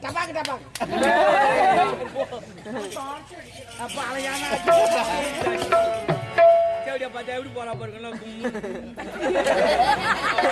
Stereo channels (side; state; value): both; identical; correlation 1.00